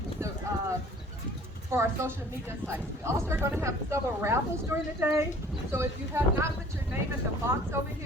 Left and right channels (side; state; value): both; normal; correlation 0.51